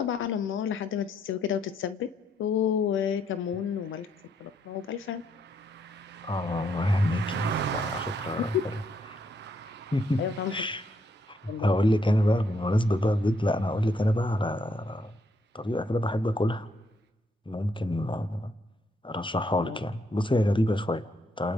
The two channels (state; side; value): normal; both; correlation 0.74